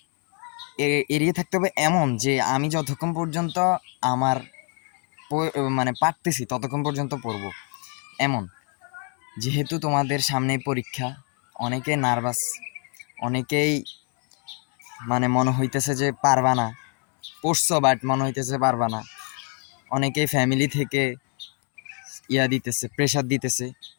এড়িয়ে থাকতে হবে এমন যে আমি যতক্ষণ পর্যন্ত আমার মানে পারতেছি ততক্ষণ পর্যন্ত পড়বো, এমন। যেহেতু তোমাদের সামনে পরীক্ষা, অনেকে নার্ভাস, অনেকেই মানে মনে হইতেছে যে পারবা না, পড়ছো বাট মনে হইতেছে পারবা না। অনেকেই ফ্যামিলি থেকে দিতেছে, প্রেশার দিতেছে।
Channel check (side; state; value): right; quieter; 39.9 dB